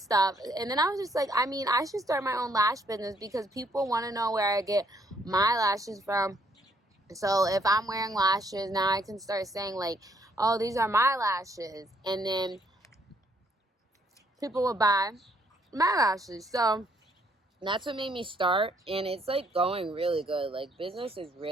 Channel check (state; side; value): normal; both; correlation 0.69